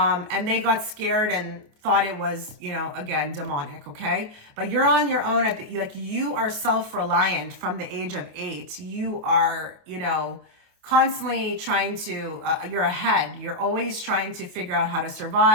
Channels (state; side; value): late; left; 28 ms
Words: they got scared and thought it was, you know, again, demonic. Okay. But you're on your own like you are self-reliant from the age of 8. You are, you know, constantly trying to, you're ahead. You're always trying to figure out how to